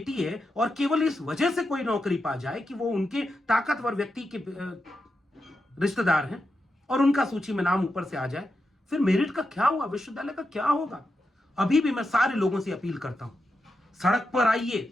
है, और केवल इस वजह से कोई नौकरी पा जाए कि वो उनके ताकतवर व्यक्ति के रिश्तेदार हैं और उनका सूची में नाम ऊपर से आ जाए, फिर मेरिट का क्या हुआ? विश्वविद्यालय का क्या होगा? अभी भी मैं सारे लोगों से अपील करता हूं, सड़क पर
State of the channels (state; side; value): normal; both; correlation 0.87